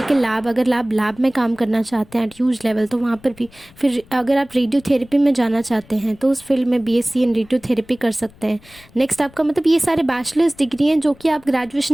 लैब, अगर आप लैब में काम करना चाहते हैं एट ह्यूज लेवल तो वहाँ पर भी। फिर अगर आप रेडियोथेरेपी में जाना चाहते हैं तो उस फील्ड में BSc इन रेडियोथेरेपी कर सकते हैं। नेक्स्ट आपका मतलब ये सारे बैचलर्स डिग्री हैं जो कि आप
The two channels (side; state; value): left; noise; rumble, 26 dB below the sound